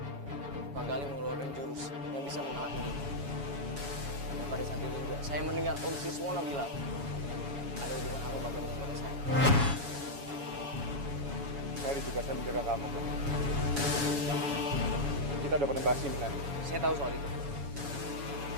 Pak Gali mengeluarkan jurus yang bisa mengalahkan dia. Dan pada saat itu juga, saya mendengar Om Siswono bilang, ada hubungan apa Bapak dengan Bapak saya? Saya juga saya menjaga kamu. Kita udah pernah bahas ini kan? Saya tahu soal itu.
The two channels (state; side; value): late; left; 7.1 ms